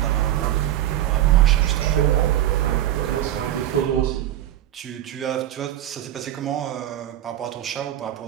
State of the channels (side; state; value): left; quieter; 12.9 dB